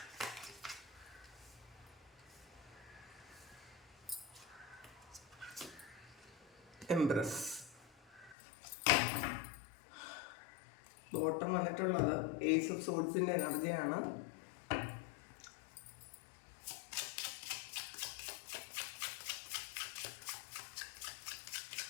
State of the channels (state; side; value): drops out; right; at 8.3 s